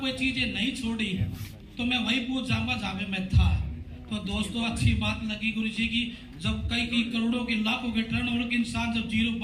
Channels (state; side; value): identical; both; correlation 1.00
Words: कोई चीजें नहीं छोड़ी तो मैं वही पूछ जाऊंगा जहां पे मैं था। तो दोस्तों, अच्छी बात लगी गुरु जी की, जब कई करोड़ों के लाखों के टर्नओवर के इंसान जब जीरो